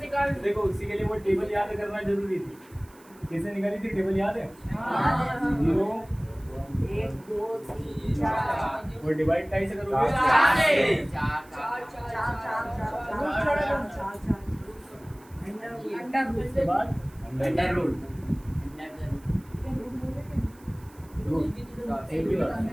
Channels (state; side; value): noise; right; hiss, 27 dB below the sound